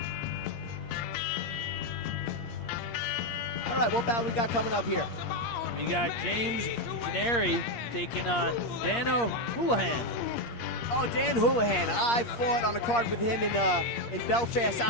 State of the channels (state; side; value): late; right; 8.6 ms